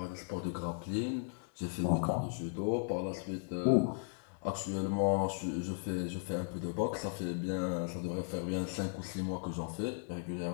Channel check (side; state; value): right; silent; digital silence